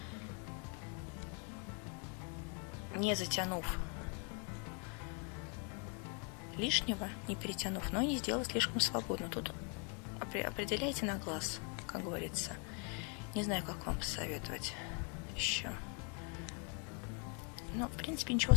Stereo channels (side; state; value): right; quieter; 36.7 dB